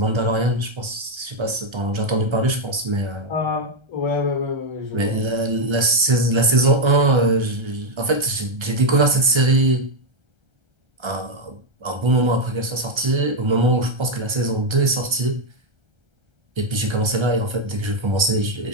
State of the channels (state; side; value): late; left; 1.3 ms